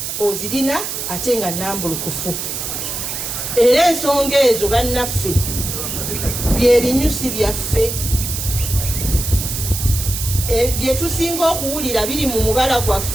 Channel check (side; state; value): right; noise; hiss, 4 dB below the sound